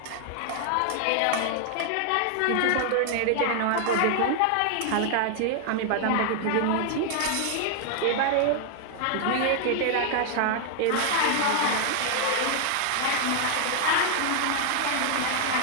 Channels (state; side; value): different; both; correlation 0.00